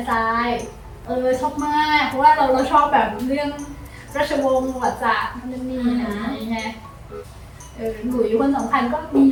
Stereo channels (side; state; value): both; identical; correlation 1.00